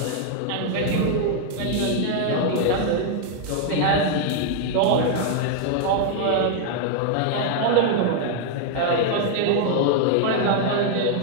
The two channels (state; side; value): different; both; correlation 0.00